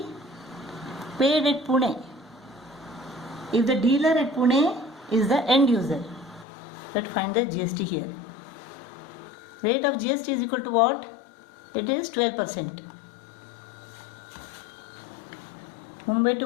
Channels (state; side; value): drops out; right; at 6.5 s